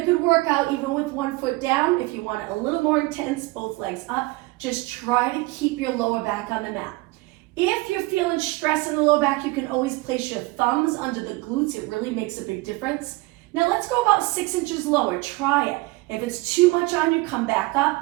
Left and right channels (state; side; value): quieter; left; 22.1 dB